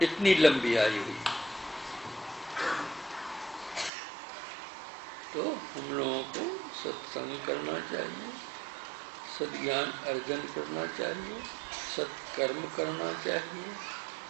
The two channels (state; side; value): drops out; left; at 3.9 s